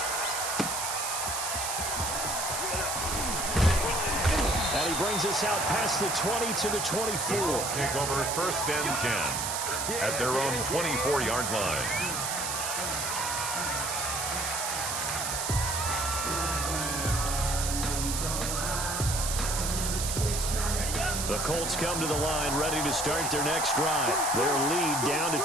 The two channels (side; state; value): right; noise; hiss, 2 dB below the sound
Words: And he brings us out past the 20 to the 24. Take over 1st and 10 at their own 24-yard line. The Colts come to the line ready to start their next drive. Their lead down to